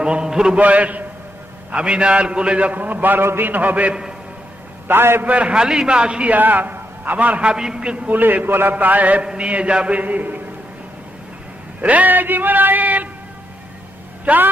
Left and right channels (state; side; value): normal; both; correlation 0.81